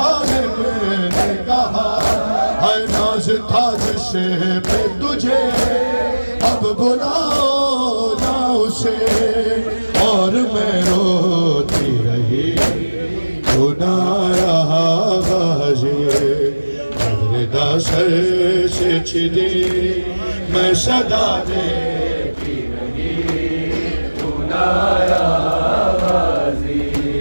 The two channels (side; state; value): both; inverted; correlation -1.00